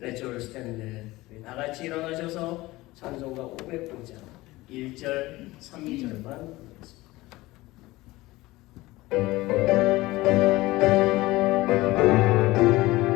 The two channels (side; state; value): right; quieter; 19.3 dB